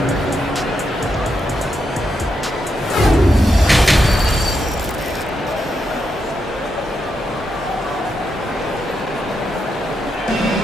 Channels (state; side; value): normal; both; correlation 0.83